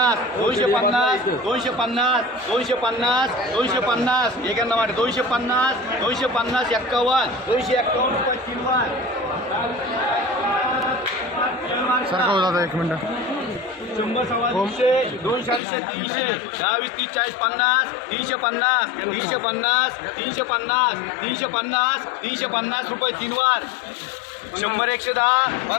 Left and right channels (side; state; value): right; drops out; at 15.6 s